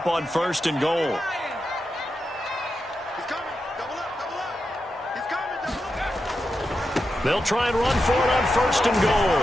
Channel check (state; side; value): normal; both; correlation 0.88